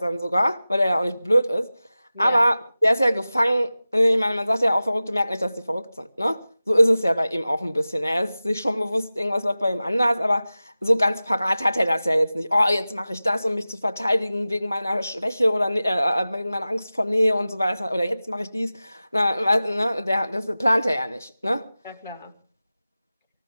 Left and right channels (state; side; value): inverted; both; correlation -0.96